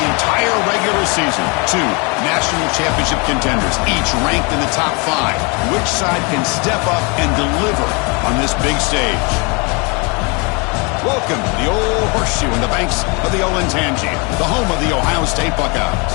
entire regular season. Two national championship contenders, each ranked in the top 5. Which side can step up and deliver on this big stage? Welcome to the old horseshoe in the banks of the Olentangy, the home of the Ohio State Buckeyes.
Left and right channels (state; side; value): quieter; right; 30.9 dB